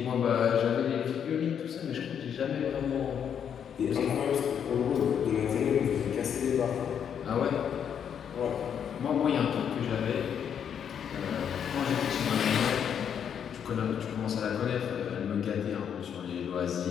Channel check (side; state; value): right; quieter; 8.2 dB